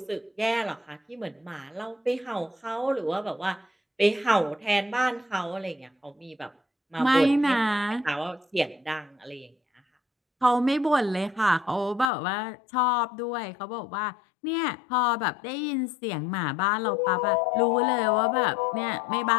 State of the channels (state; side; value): drops out; right; at 12.1 s